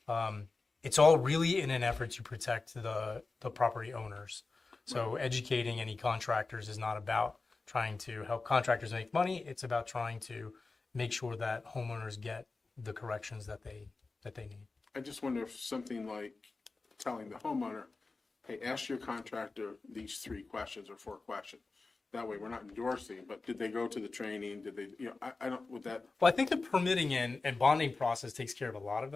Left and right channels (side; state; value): right; quieter; 3.8 dB